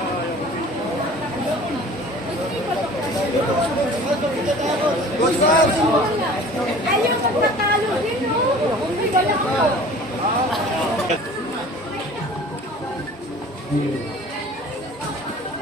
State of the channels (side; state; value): both; normal; correlation 0.45